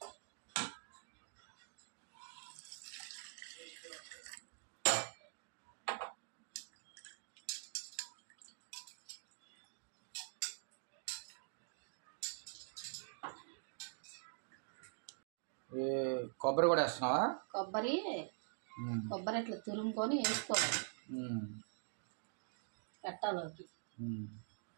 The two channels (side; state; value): left; silent; digital silence